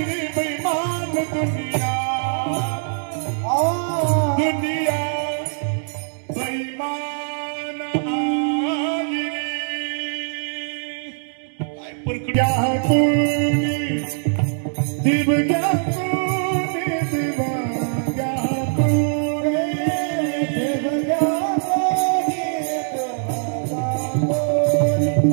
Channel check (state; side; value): silent; left; digital silence